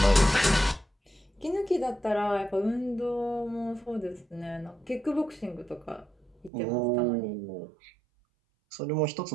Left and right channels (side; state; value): left; drops out; at 6.5 s